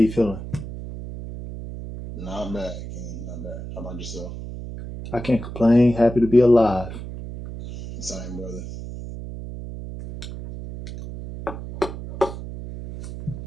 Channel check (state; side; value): noise; right; hum, 10 dB below the sound